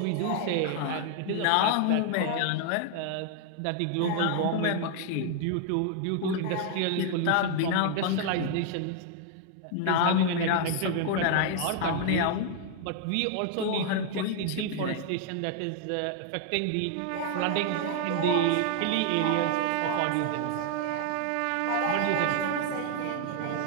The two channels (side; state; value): both; different; correlation 0.00